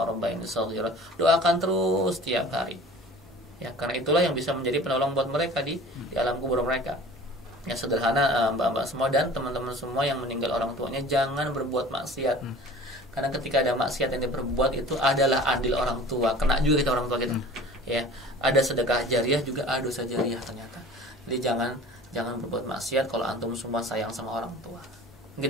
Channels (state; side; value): normal; both; correlation 0.43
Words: rabbayani shaghira. Doakan terus tiap hari. Ya, karena itulah yang bisa menjadi penolong buat mereka di alam kubur mereka. Ya, sederhana mbak-mbak semua dan teman-teman semua yang meninggal orang tuanya, jangan berbuat maksiat. Karena ketika ada maksiat yang diperbuat itu adalah adil orang tua, kena juga kita orang tua kita. Ya, ada sedekah jariah juga ada dosa jariah ternyata. Jadi jangan berbuat maksiat kalau antum semua sayang sama orang tua.